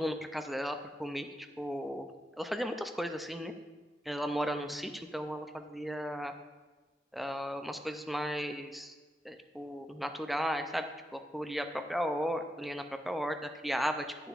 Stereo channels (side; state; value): both; normal; correlation 0.85